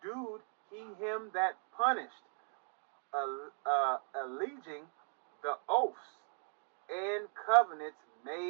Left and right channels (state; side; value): silent; left; 52 dB below the other